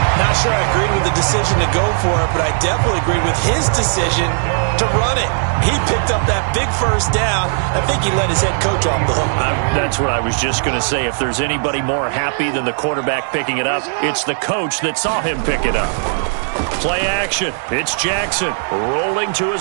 Not sure I agreed with the decision to go for it, but I definitely agreed with his decision to run it. He picked up that big first down. I think he let his head coach off the hook. That's what I was just going to say. If there's anybody more happy than the quarterback picking it up, it's the coach that saw him pick it up. Play action. It's Jackson rolling to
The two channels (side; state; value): left; silent; digital silence